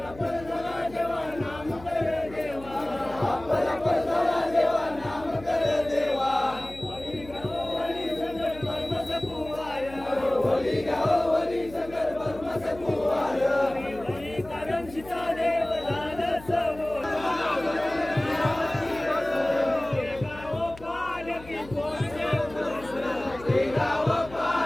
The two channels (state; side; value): noise; left; hum, 18 dB below the sound